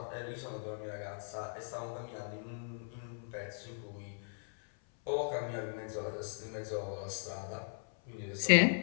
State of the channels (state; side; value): silent; right; 52 dB below the other